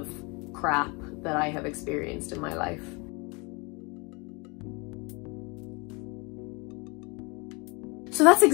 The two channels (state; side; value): quieter; right; 29.3 dB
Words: crap that I have experienced in my life. So that's